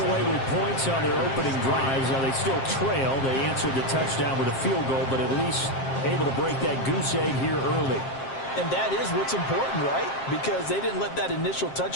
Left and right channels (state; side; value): late; right; 7.5 ms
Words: away with points on their opening drives. Now they still trail. They answered the touchdown with a field goal, but at least able to break that goose egg here early. And that is what's important, right? Because they didn't let that initial